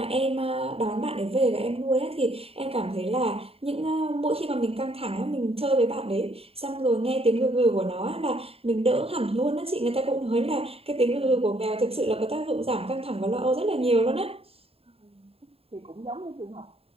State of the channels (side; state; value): left; late; 0.28 ms